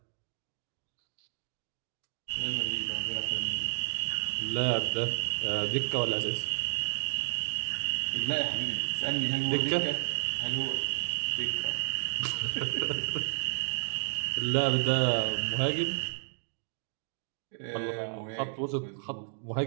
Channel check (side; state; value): left; silent; digital silence